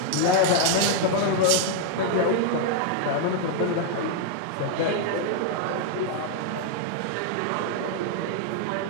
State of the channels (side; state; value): both; different; correlation 0.00